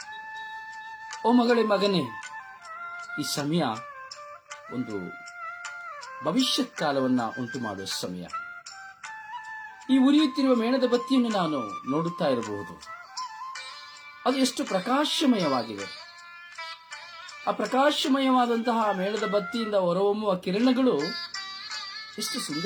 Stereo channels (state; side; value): identical; both; correlation 1.00